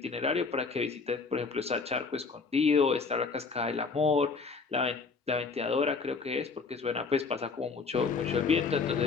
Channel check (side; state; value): right; quieter; 4.7 dB